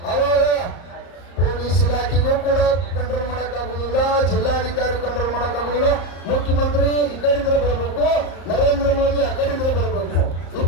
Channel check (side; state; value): right; late; 34 ms